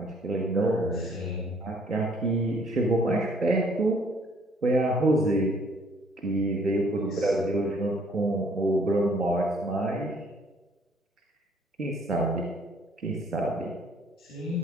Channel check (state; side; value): normal; both; correlation 0.61